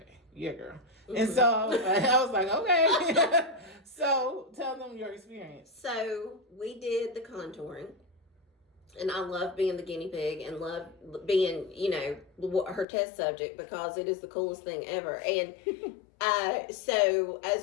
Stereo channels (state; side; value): drops out; right; at 12.9 s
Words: yeah, girl. Mm-hmm. And so I was like, okay. So tell them your experience. So we did the contouring. And I love being the guinea pig and love being, her test subject because it is the coolest thing ever. And so